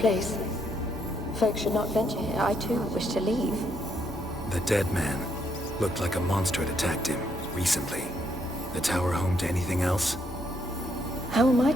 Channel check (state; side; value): normal; both; correlation 0.74